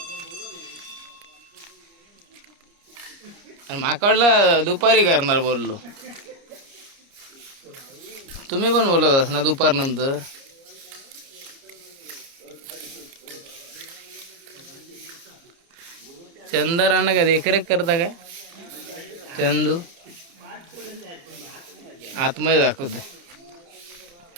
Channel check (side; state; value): left; late; 29 ms